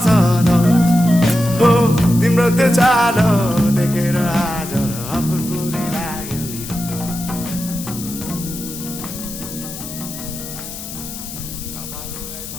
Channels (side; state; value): left; noise; hiss, 10 dB below the sound